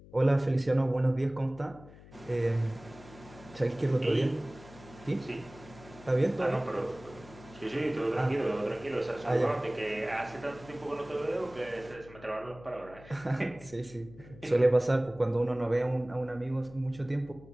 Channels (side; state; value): left; noise; hum, 20 dB below the sound